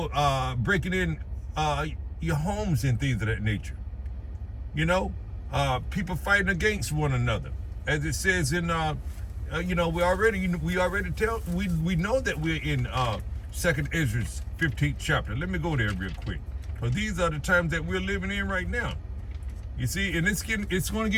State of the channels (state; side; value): identical; both; correlation 1.00